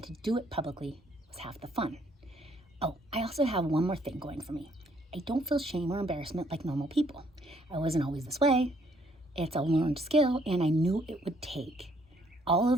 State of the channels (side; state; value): both; normal; correlation 0.66